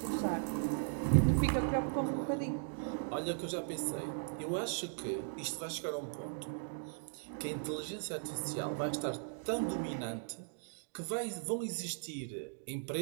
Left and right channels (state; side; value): silent; left; digital silence